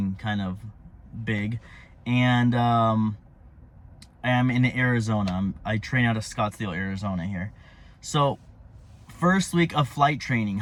kind of big. And I am in Arizona. I train out of Scottsdale, Arizona here. So first week of flight training,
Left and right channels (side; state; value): both; identical; correlation 1.00